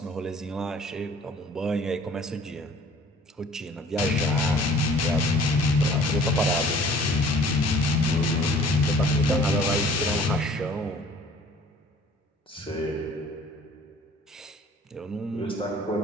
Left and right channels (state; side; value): normal; both; correlation 0.52